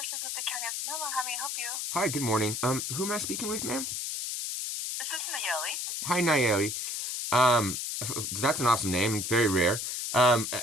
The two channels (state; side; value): noise; left; hiss, 3 dB below the sound